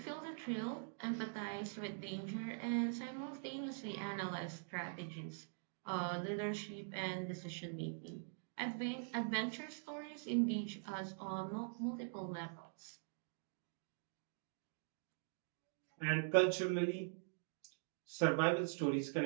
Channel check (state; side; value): silent; left; digital silence